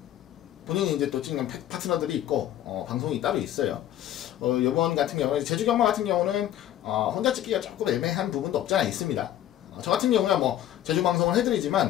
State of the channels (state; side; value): quieter; right; 12.2 dB